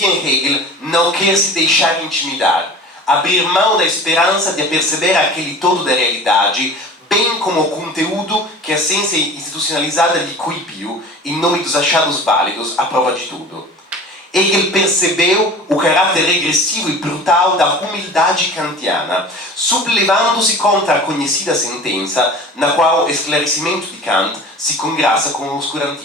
em Hegel não quer se deixar intimidar, abrir mão da esperança de perceber aquele todo da realidade, bem como o conteúdo que a ciência institucionalizada lhe coibiu em nome dos achados válidos à prova de tudo. Hegel percebeu o caráter regressivo e brutal da humildade kantiana, sublevando-se contra a conhecida sentença na qual o esclarecimento de Kant se congraça com o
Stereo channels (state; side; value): normal; both; correlation 0.40